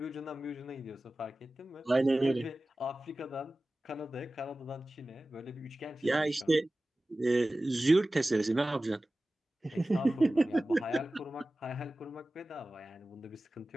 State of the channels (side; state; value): both; normal; correlation 0.96